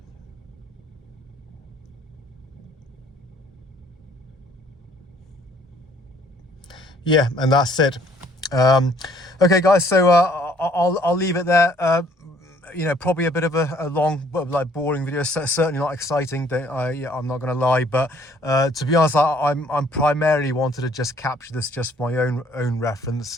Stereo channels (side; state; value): both; normal; correlation 0.61